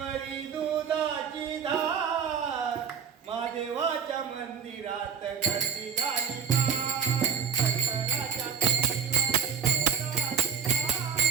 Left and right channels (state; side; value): quieter; left; 7.1 dB